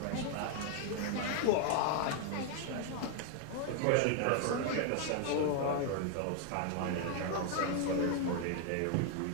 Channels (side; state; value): both; different; correlation 0.00